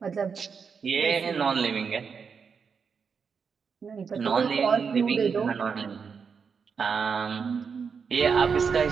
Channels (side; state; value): left; quieter; 6.0 dB